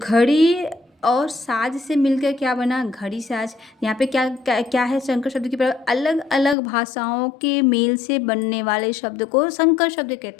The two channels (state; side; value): drops out; right; at 6.6 s